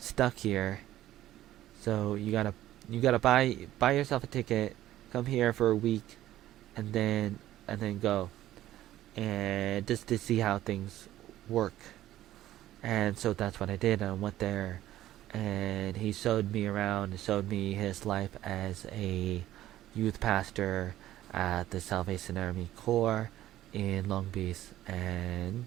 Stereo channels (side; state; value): left; quieter; 13.8 dB